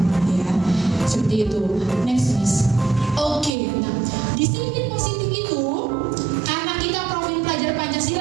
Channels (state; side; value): drops out; left; at 3.5 s